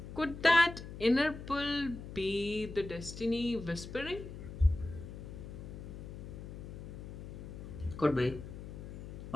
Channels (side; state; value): left; noise; hum, 10 dB below the sound